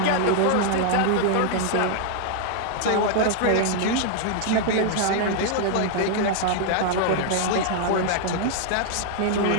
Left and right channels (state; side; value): different; both; correlation 0.00